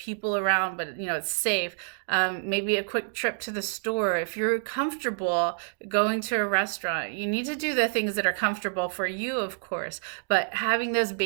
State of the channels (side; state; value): left; silent; digital silence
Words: around, but it's safe. Maybe a quick trip to the store. If you're comfortable going to a restaurant, you need to do the things that are comfortable for you, of course, but having those